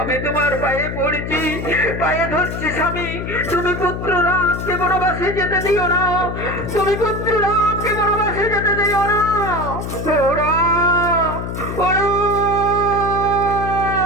তোমার পায়ে পড়ছি, পায়ে ধরছি স্বামী, তুমি পুত্র রামকে বনবাসে যেতে দিও না, তুমি পুত্র রামকে বনবাসে যেতে দিও না। ও রাম, ও রাম,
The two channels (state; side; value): noise; left; hum, 5 dB below the sound